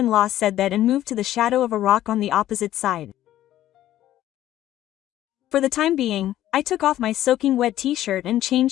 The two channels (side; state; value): right; quieter; 13.2 dB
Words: said that and moved to the shadow of a rock on the opposite side. For the time being, I took off my soaking wet t-shirt and